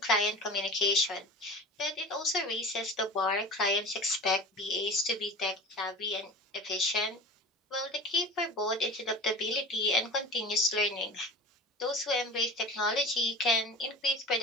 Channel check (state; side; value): normal; both; correlation 0.36